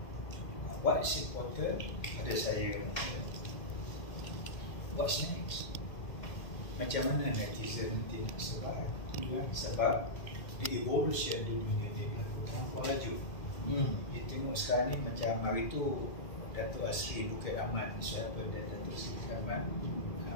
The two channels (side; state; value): right; late; 1.9 ms